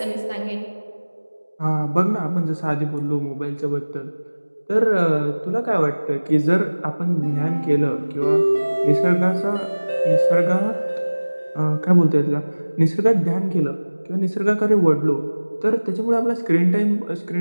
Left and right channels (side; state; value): both; inverted; correlation -1.00